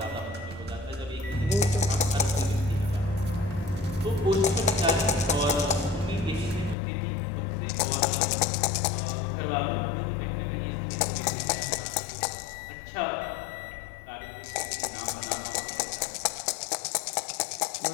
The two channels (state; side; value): drops out; right; at 6.8 s